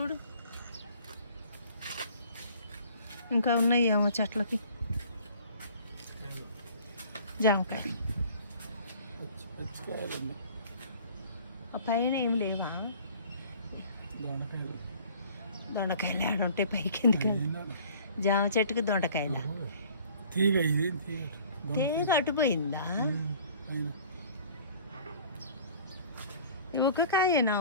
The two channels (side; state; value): both; inverted; correlation -0.50